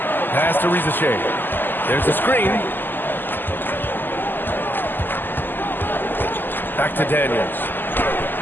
Pass to Risacher. There's a screen. Back to Daniels.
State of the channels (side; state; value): right; late; 0.092 ms